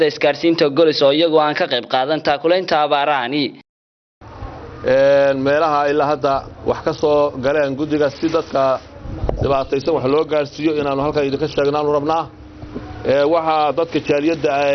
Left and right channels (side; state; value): both; identical; correlation 1.00